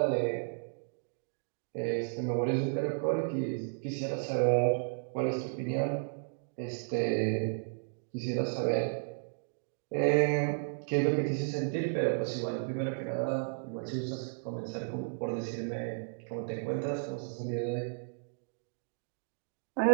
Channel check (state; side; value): silent; left; digital silence